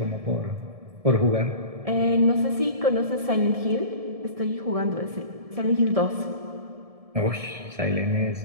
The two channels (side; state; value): left; late; 1.7 ms